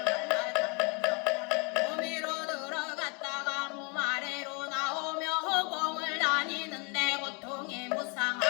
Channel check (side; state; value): right; quieter; 33.5 dB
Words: 갈라타면서 몸위로 들어갔다가 몸 아래로 나오며 허공을 다니는데 고통이